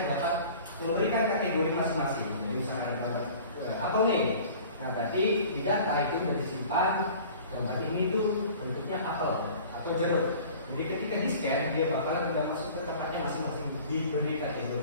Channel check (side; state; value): both; inverted; correlation -0.45